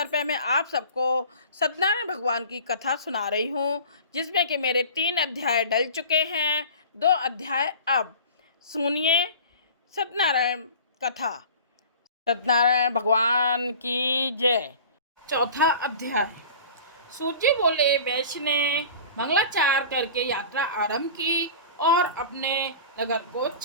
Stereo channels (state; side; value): inverted; both; correlation -0.40